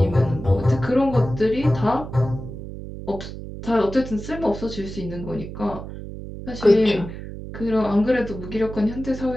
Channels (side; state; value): right; noise; hum, 10 dB below the sound